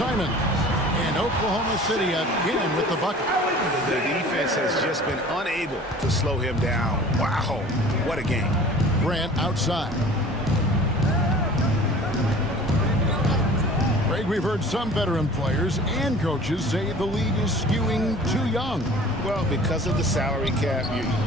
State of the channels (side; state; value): both; normal; correlation 0.45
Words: And Oklahoma City again with the bucket. The defense has just been unable to slow him down. Wow, what a game. Grant outside. Greg, we've heard some veteran players and coaches say the league is skewing too young. Well, because of the salary cap,